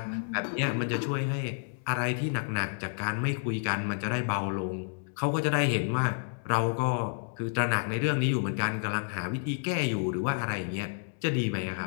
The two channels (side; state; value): right; silent; digital silence